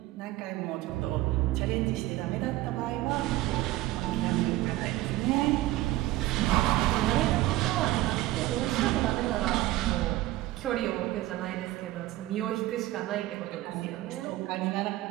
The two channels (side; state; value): left; quieter; 16.7 dB